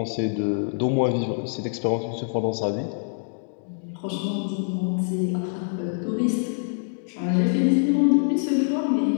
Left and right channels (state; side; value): silent; right; digital silence